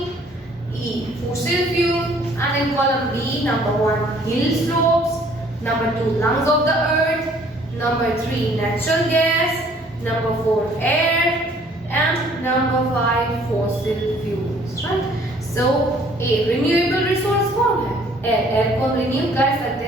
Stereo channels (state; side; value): normal; both; correlation 0.58